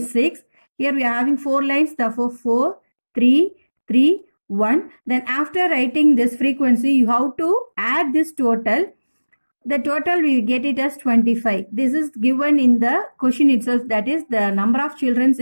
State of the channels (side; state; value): both; inverted; correlation -1.00